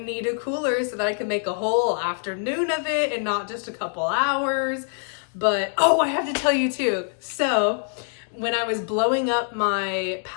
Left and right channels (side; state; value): right; silent; 62 dB below the other